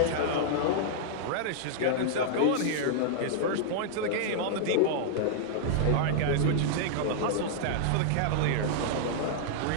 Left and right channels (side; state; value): both; different; correlation -0.01